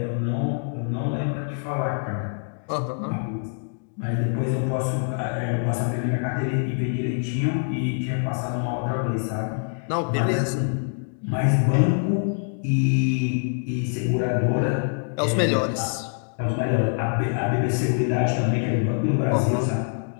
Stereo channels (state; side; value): silent; right; 62 dB below the other